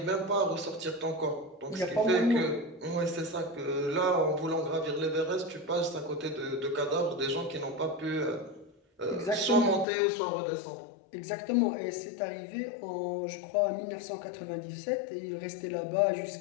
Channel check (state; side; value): drops out; right; at 9.9 s